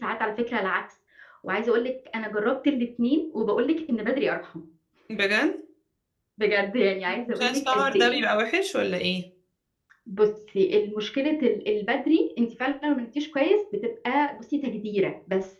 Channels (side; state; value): both; identical; correlation 1.00